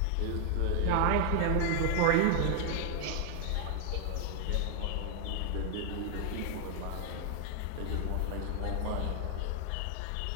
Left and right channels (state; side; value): different; both; correlation 0.00